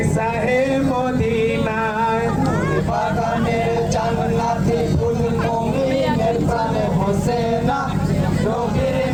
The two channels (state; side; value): identical; both; correlation 1.00